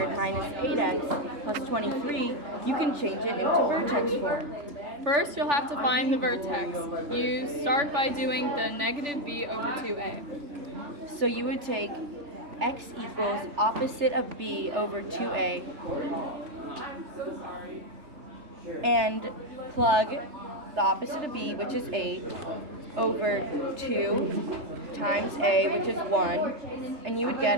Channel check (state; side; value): late; left; 3.5 ms